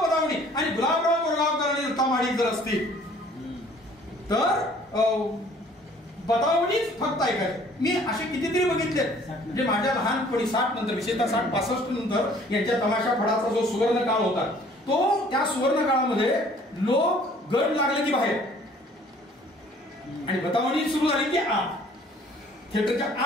आणि गुलाबराव बोरगावकर आणि दत्ता माडिक जर असतील तर बतावणीच फक्त ऐकायचं. मी असे कितीतरी बघितले, म्हणजे माझ्या लहानपणी 60 नंतर, विशेषतः 60-65 नंतर यांच्या तमाशा फडाचा जो सुवर्ण काळ होता, तो त्या सुवर्ण काळामध्ये लोक गड लागले की बाहेर आणि बतावणी सुरू झाली की आत, थिएटरच्या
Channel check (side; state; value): both; normal; correlation 0.55